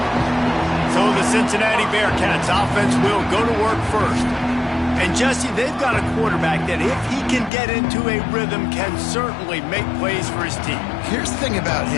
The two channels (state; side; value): drops out; right; at 7.5 s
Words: So the Cincinnati Bearcats offense will go to work first. And Jesse, they've got a quarterback that if he can get into a rhythm can certainly make plays for his team. Here's the thing about